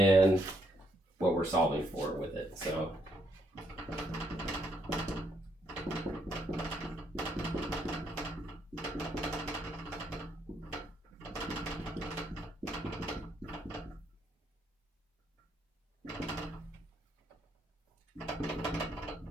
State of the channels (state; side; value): normal; both; correlation 0.74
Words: what we're solving for with it. So